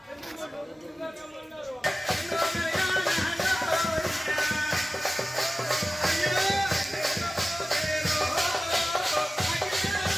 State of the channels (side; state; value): both; normal; correlation 0.96